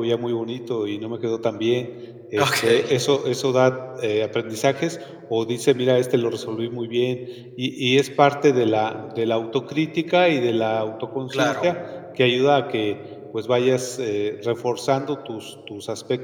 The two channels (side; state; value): both; identical; correlation 1.00